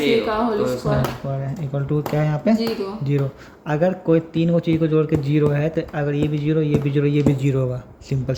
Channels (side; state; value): both; identical; correlation 1.00